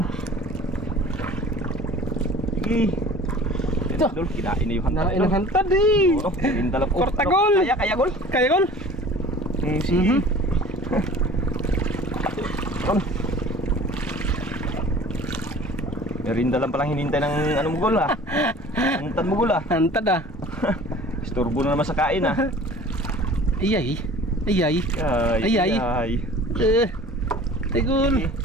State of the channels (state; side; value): normal; both; correlation 0.45